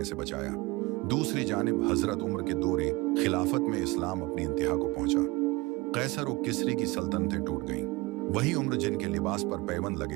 से बचाया। दूसरी जानिब हजरत उमर के दौरे खिलाफत में इस्लाम अपनी इंतहा को पहुंचा। कैसर और किसरी की सल्तनतें टूट गईं। वही उम्र जिनके लिबास पर पैबंद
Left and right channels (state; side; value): quieter; left; 23.2 dB